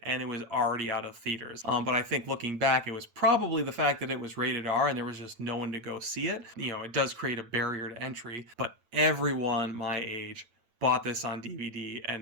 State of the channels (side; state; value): left; late; 8.9 ms